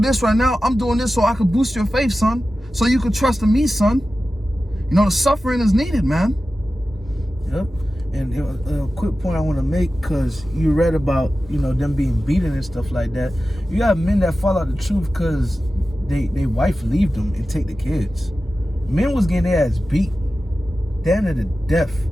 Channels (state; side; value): normal; both; correlation 0.94